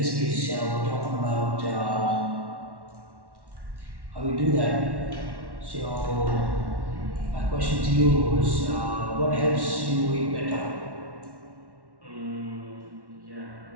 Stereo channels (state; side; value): late; left; 1.1 ms